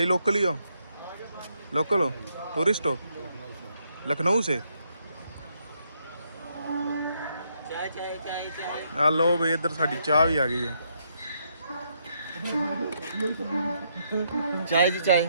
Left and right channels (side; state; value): both; inverted; correlation -0.75